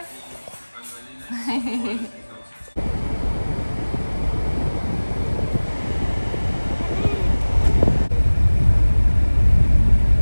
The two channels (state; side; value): inverted; both; correlation -1.00